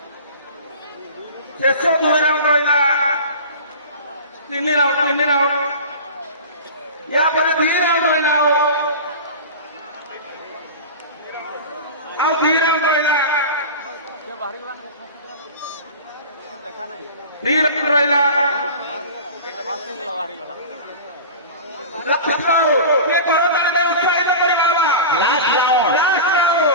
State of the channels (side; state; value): both; inverted; correlation -0.33